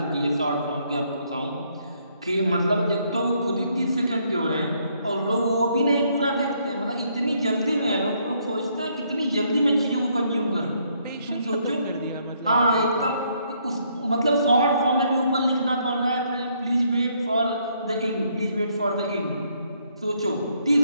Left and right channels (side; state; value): both; inverted; correlation -0.71